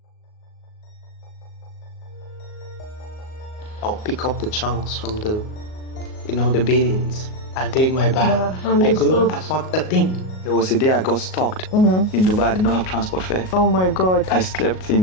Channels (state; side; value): late; right; 38 ms